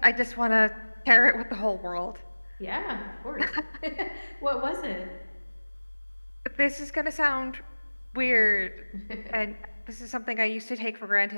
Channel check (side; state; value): both; inverted; correlation -1.00